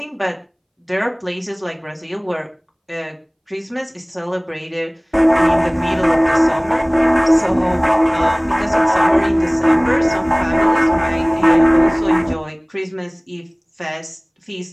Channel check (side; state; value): both; identical; correlation 1.00